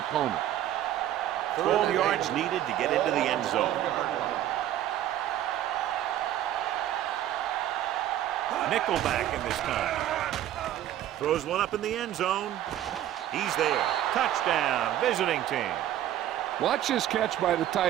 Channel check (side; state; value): left; quieter; 12.2 dB